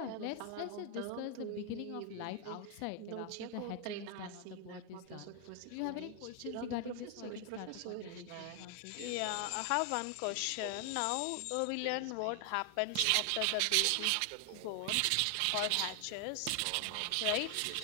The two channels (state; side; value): different; both; correlation 0.00